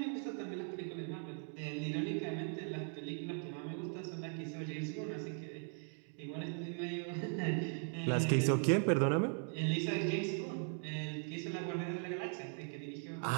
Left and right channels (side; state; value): left; silent; 52 dB below the other